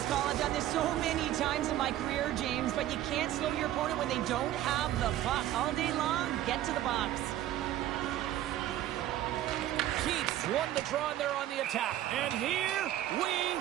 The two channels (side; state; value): left; quieter; 13.2 dB